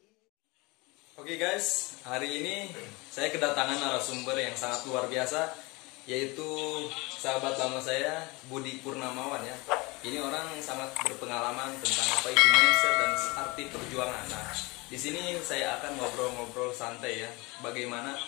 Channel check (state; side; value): quieter; right; 25.0 dB